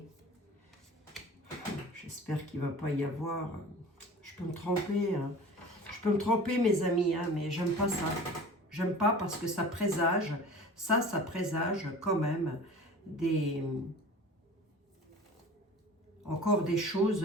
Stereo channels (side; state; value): both; normal; correlation 0.40